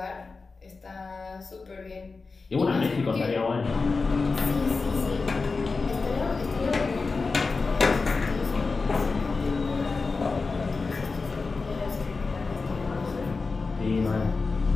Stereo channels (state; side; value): quieter; right; 4.2 dB